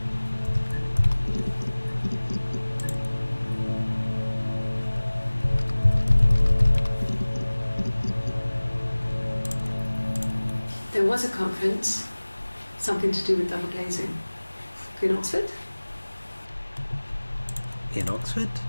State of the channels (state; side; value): inverted; both; correlation -1.00